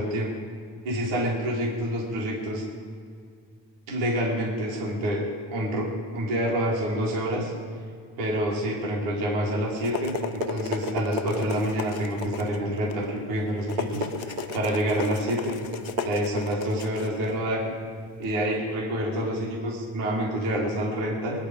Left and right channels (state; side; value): late; left; 8.9 ms